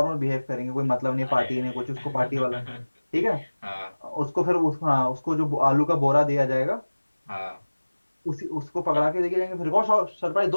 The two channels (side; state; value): both; inverted; correlation -1.00